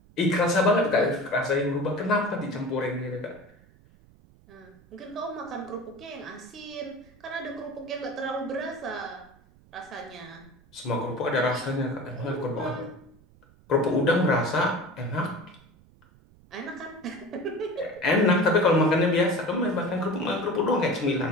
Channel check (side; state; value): right; noise; rumble, 27 dB below the sound